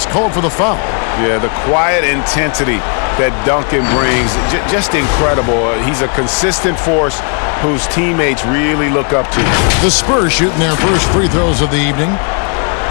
called for the foul. Yeah, the quiet intensity that Duncan brings, just incredible. He's a consistent force whose teammates really look up to. The Spurs shooting their first free throws of the evening.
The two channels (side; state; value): right; quieter; 39.7 dB